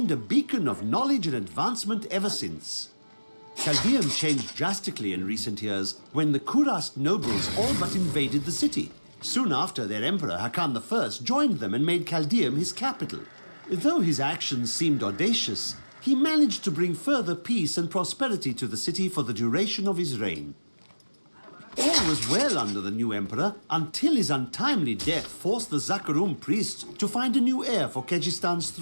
a beacon of knowledge and advancement ever since. Chaldeum changed drastically in recent years when the Kurast nobles all but invaded the city. Soon after, their emperor Hakan I joined them and made Chaldeum his capital. Though his actions seemed audacious, he managed to bring further peace and prosperity to the city for the duration of his reign. All was well under the new emperor until his untimely death forced the Zakarum priests to find a new heir for Kejistan's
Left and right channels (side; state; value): both; inverted; correlation -1.00